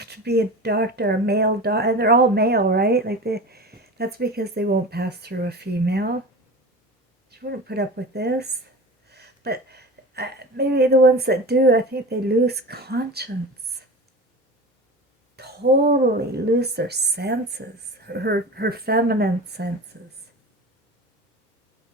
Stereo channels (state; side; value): normal; both; correlation 0.32